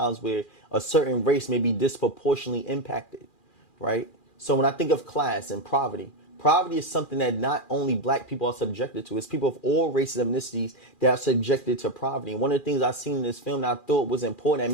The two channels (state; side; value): late; right; 2.4 ms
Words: where a certain race may be disproportionately impacted, right? So when I think of class and poverty, poverty is something that not only black people are subjected to, it's people of all races and ethnicities that are subjected to poverty. And one of the things I've seen in this film that I thought was important that